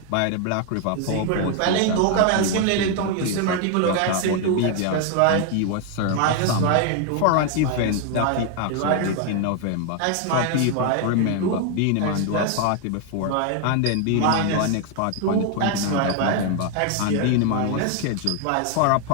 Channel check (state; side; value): different; both; correlation 0.01